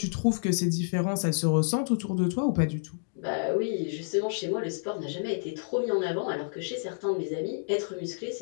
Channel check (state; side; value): silent; right; digital silence